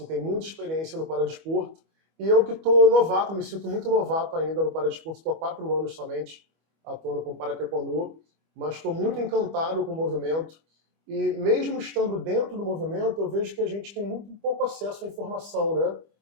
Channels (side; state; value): left; late; 25 ms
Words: tem muita experiência no paradesporto. E eu que estou novato, me sinto muito novato ainda no paradesporto, estou há 4 anos somente atuando com Parataekwondo, mas estou muito encantado com o movimento. E mesmo estando dentro do movimento, eu vejo que a gente tem muito pouco acesso à informação, né?